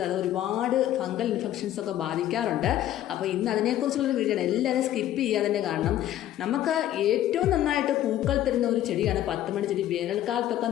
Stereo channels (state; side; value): quieter; right; 12.7 dB